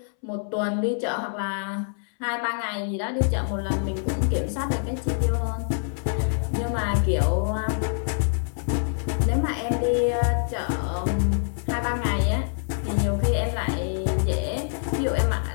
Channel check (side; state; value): right; silent; 61 dB below the other